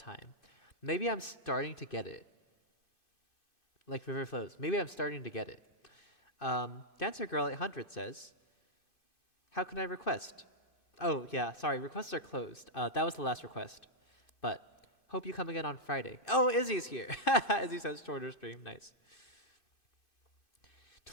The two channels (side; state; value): right; late; 2.6 ms